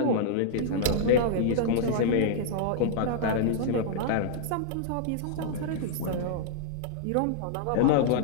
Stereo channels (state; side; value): different; both; correlation -0.01